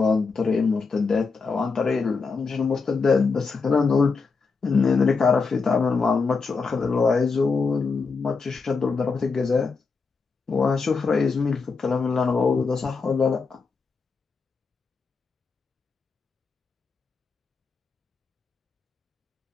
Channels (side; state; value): right; quieter; 4.7 dB